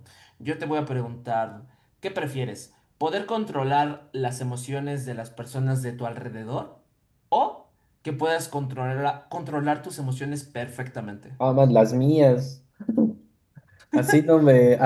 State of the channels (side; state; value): both; identical; correlation 1.00